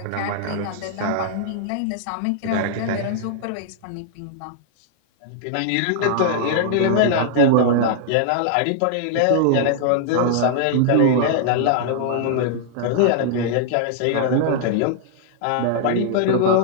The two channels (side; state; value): both; different; correlation -0.01